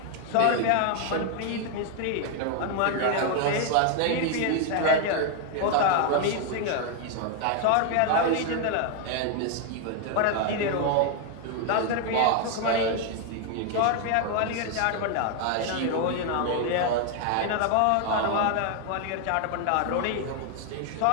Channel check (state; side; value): different; both; correlation 0.00